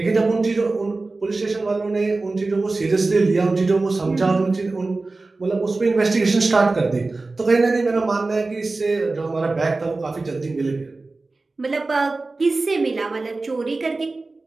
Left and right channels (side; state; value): left; quieter; 3.4 dB